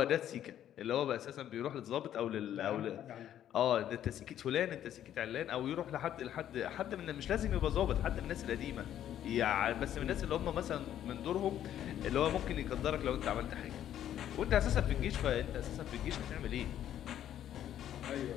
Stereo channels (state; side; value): quieter; right; 11.0 dB